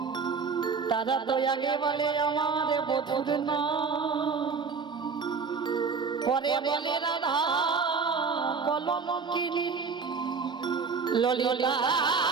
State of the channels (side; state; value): left; quieter; 5.3 dB